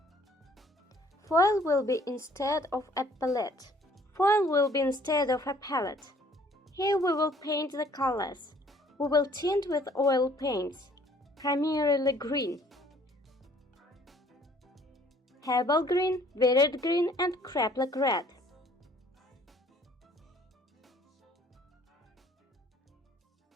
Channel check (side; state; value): both; normal; correlation 0.58